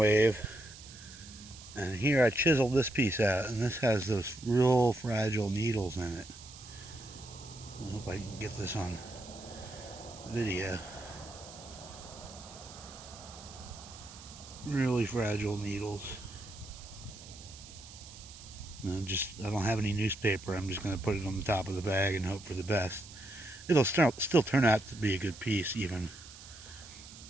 And here I chiseled this piece out, and this has those real fragile needles in it. I hope I can get this on video. Really fragile needles. And I don't have any newspaper. I'm just going to put it on the top of the bag and hope for the best. It'll still turn out to be a good piece, even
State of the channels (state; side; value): noise; right; hiss, 17 dB below the sound